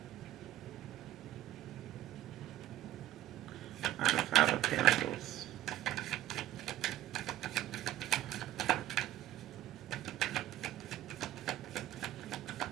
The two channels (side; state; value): left; quieter; 14.2 dB